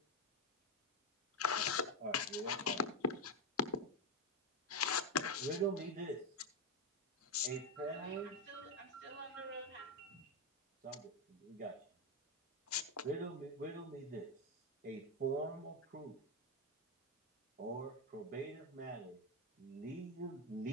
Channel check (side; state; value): both; normal; correlation 0.08